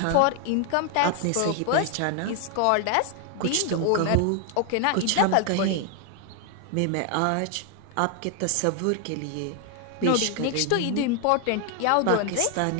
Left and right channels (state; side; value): different; both; correlation 0.00